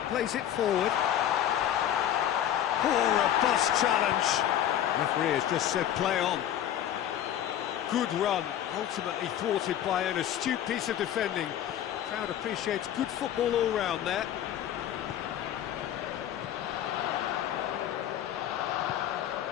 plays it forward. Oh, robust challenge. Referee has just said play on. Good run, ultimately thwarted by an astute piece of defending. Crowd appreciates good football all round there.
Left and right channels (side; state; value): right; quieter; 11.1 dB